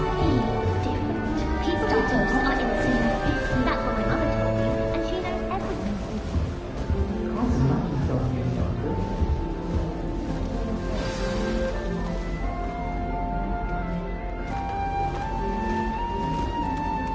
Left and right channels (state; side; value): identical; both; correlation 1.00